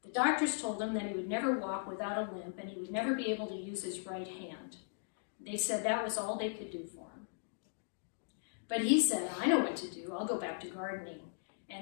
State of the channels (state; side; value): silent; right; digital silence